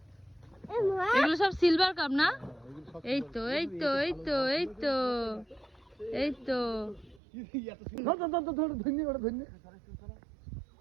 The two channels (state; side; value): drops out; left; at 7.2 s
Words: এগুলো সব সিলভার কাপ না? এই তো এই তো এই তো এই তো এই তো